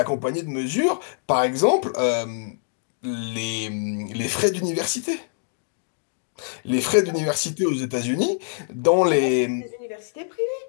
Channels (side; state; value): right; silent; digital silence